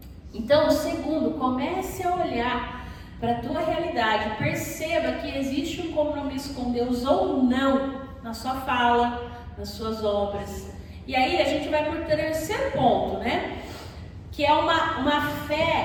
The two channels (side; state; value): both; identical; correlation 1.00